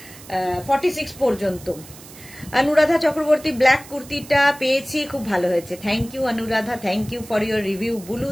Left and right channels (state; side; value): noise; right; hiss, 19 dB below the sound